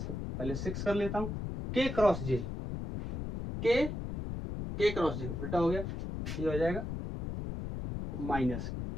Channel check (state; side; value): noise; left; rumble, 5 dB below the sound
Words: पहले 6 कर लेता हूं, के क्रॉस जे, के क्रॉस जे उल्टा हो गया, ये हो जाएगा माइनस